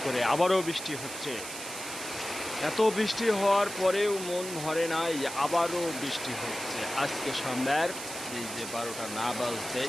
করে আবারও বৃষ্টি হচ্ছে। এত বৃষ্টি হওয়ার পরেও মন ভরে নাই, আবারও বৃষ্টি হচ্ছে। আজকে সন্ধ্যার এই যে 12টা না বাজতে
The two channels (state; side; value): noise; right; hiss, 9 dB below the sound